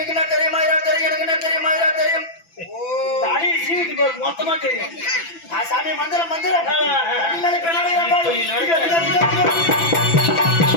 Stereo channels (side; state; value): right; late; 6.0 ms